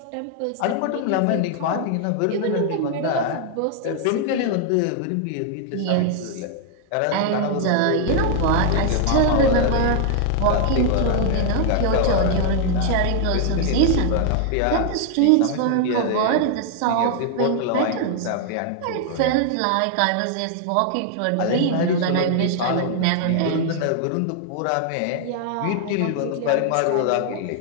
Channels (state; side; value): different; both; correlation 0.00